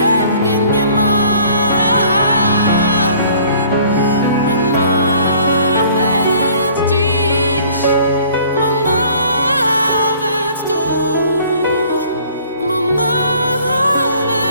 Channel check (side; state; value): both; inverted; correlation -0.54